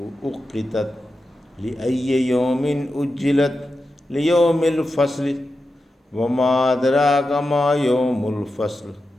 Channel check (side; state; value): both; normal; correlation 0.90